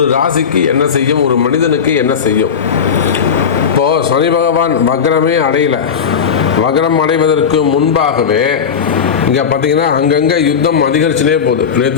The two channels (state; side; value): quieter; right; 6.9 dB